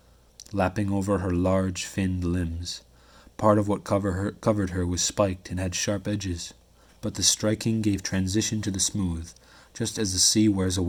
lapping over her large, finned limbs. Part of what covered her was spiked and had sharp edges, but the striking gave transition to the smooth, just as the sea wears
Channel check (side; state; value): both; identical; correlation 1.00